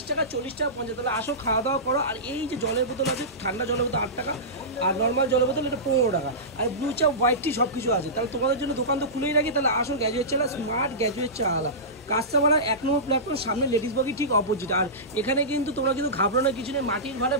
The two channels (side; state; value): both; normal; correlation -0.19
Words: টাকা, 40 টাকা, 50। তাহলে আসো খাওয়া দাওয়া করো। আর এই যে জলের বোতল আছে, ঠান্ডা জলের বোতল 8 টাকা, আর নর্মাল জলের বোতল এটা 15 টাকা। আর ব্লু চা, হোয়াইট টি সব কিছু আছে। তাহলে তোমাদের জন্য দোকান তো খুলেই রাখি। তাহলে আসো গ্র্যাজুয়েট চা, স্মার্ট গ্র্যাজুয়েট চা আলা কাস্টমার 1 নম্বর প্ল্যাটফর্ম, সামনে লেডিস বগি ঠিক অপোজিট। আর এখানে কিন্তু তোমরা কিন্তু ঘাবড়ানোর কিছু নেই। মাটির ভাড়ে